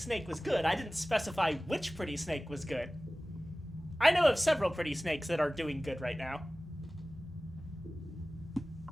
was good. I didn't specify which pretty snake was good. I know of several pretty snakes that are doing good right now.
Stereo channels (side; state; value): both; normal; correlation 0.97